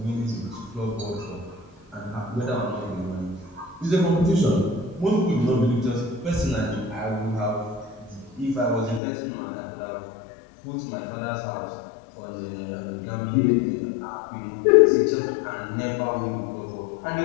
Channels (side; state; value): right; drops out; at 9.0 s